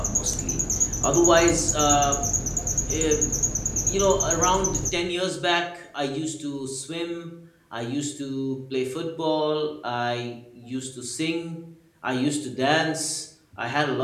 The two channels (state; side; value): identical; both; correlation 1.00